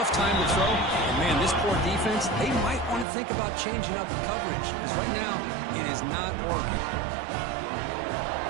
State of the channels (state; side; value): drops out; left; at 3.1 s